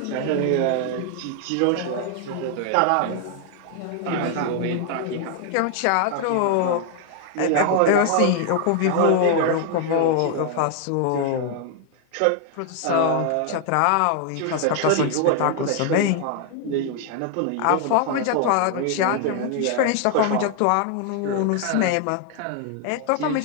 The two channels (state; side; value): different; both; correlation 0.00